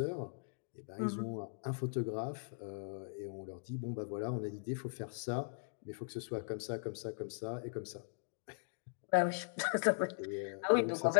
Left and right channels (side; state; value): right; silent; digital silence